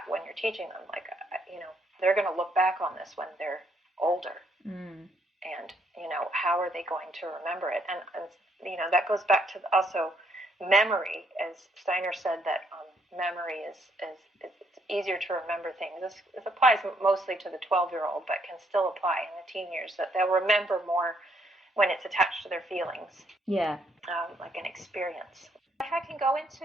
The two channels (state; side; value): normal; both; correlation 0.71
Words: when you're teaching them, like, they're going to look back on this when they're older. And, how are they going to remember it? And that goes back to also memory, as Steiner said that memory is it's easier to remember things. This applies mostly to the 12-year-old, but can still apply in the teen years, that they'll remember more when it's attached to their feelings. Yeah. Like an experience. If I can go